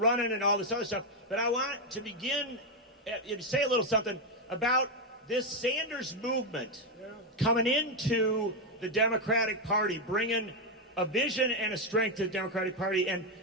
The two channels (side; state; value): both; normal; correlation 0.04